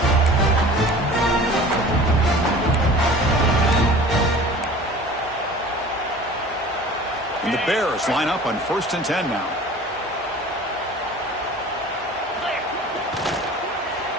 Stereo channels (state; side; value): normal; both; correlation 0.43